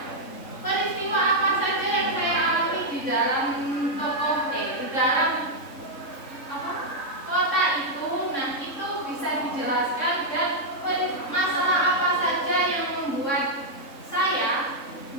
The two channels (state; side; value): late; right; 3.7 ms